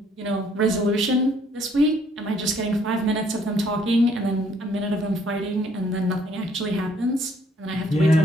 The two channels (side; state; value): both; normal; correlation 0.64